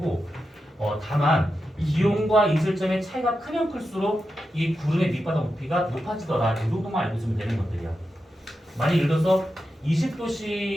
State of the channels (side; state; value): both; normal; correlation 0.89